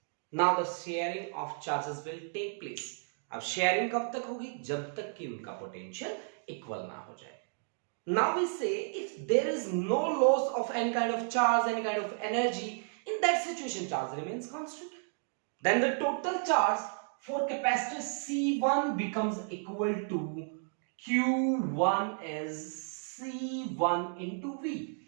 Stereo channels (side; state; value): left; silent; 56 dB below the other